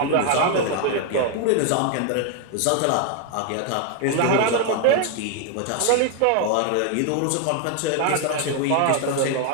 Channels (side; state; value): both; different; correlation 0.00